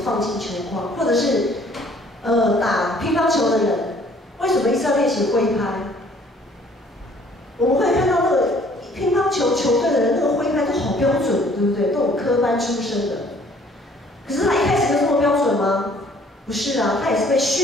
放进球框，或者是打乒乓球的人，为什么一直要练习挥拍？我们会看到那个乒乓球球队的人，那个挥拍都好标准，对不对？都有科班出身的。可是他一开始就这么标准吗？不是啊，他也是被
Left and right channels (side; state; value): both; normal; correlation 0.58